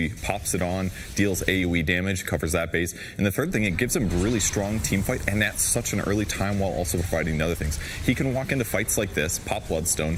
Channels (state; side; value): identical; both; correlation 1.00